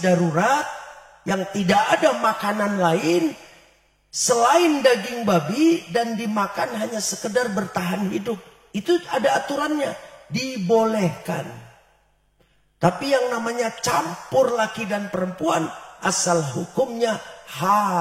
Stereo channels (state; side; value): identical; both; correlation 1.00